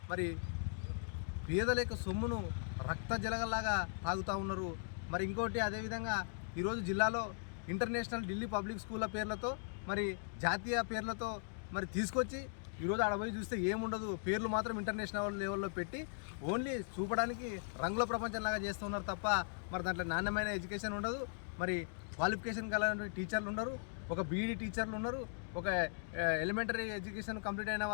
మరి పేదల యొక్క సొమ్మును రక్త జలగల్లాగా తాగుతూ ఉన్నారు. మరి ఇంకోటి అదేవిధంగా ఈరోజు జిల్లాలో ఇంటర్నేషనల్ ఢిల్లీ పబ్లిక్ స్కూళ్ళ పేర్లతో, మరి జాతీయ పేర్లతో మరి తీసుకొచ్చి ఈరోజు ఆడ పోయి చూస్తే ఏముండదు, పేర్లు మాత్రం ఇంటర్నేషనల్ లెవెల్లో పెట్టి ఓన్లీ చూపడానికి రంగుల ప్రపంచంలాగా చేస్తున్నారు తప్ప మరి దాంట్లో నాణ్యమైన ఎడ్యుకేషన్ ఉండదు. మరి క్వాలిఫికేషన్ కలిగిన టీచర్లు ఉన్నారు, ఒక బీఈడీ టీచర్లు ఉన్నారు, ఒక ఎలిమెంటరీ ఎడ్యుకేషన్ కంప్లీట్ అయిన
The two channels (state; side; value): silent; right; digital silence